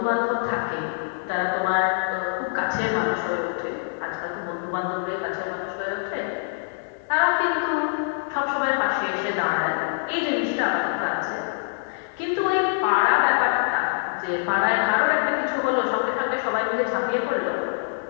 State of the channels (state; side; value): silent; right; digital silence